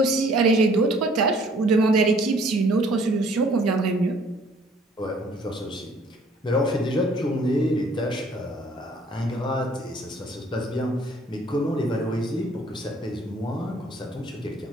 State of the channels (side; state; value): both; normal; correlation 0.58